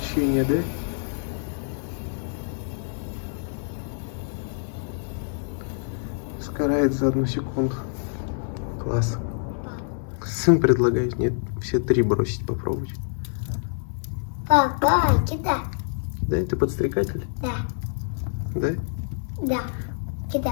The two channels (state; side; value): silent; right; 61 dB below the other